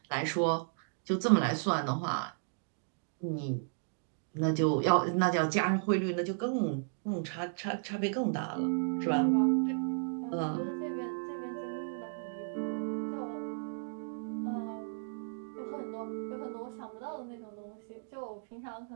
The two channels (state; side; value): silent; left; digital silence